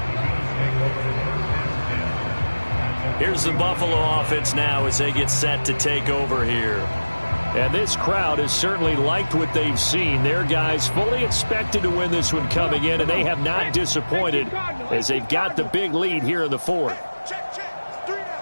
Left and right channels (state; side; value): inverted; both; correlation -1.00